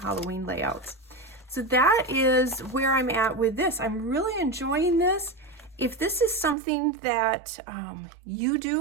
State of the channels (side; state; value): left; drops out; at 6.6 s